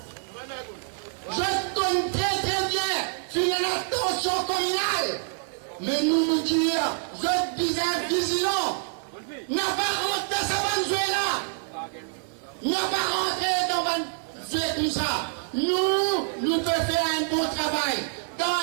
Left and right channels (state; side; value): silent; left; 60 dB below the other